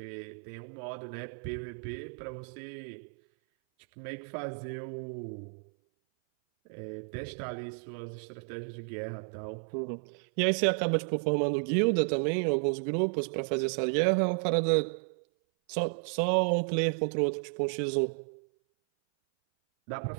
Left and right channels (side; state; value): left; silent; 56 dB below the other